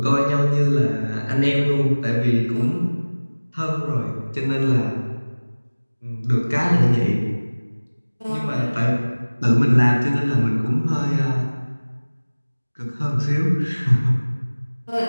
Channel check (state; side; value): inverted; both; correlation -1.00